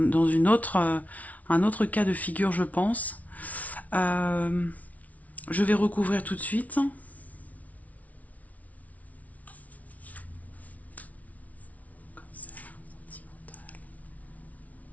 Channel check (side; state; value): right; late; 0.070 ms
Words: autre cas de figure, je pense. Je vais recouvrir tout de suite.